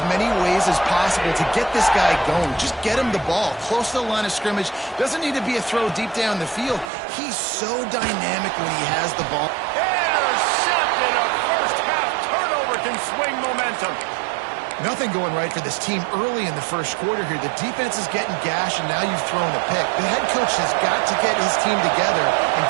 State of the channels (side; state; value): left; drops out; at 6.9 s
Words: many ways as possible to get this guy going. Just get him the ball close to the line of scrimmage. Doesn't need to be a throw deep down the field. He's so dynamic when he has the ball. Intercepted. A first-half turnover can swing momentum. Nothing going right for this team early in the first quarter here. The defense is getting gashed, and now you've thrown a pick. The head coach has got to get his team together and